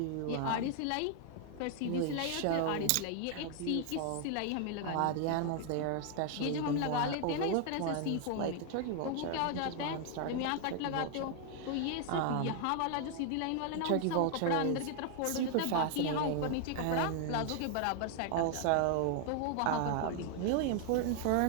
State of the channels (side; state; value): both; different; correlation 0.00